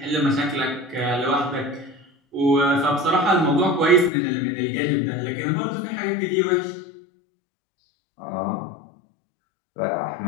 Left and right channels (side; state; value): right; drops out; at 4.1 s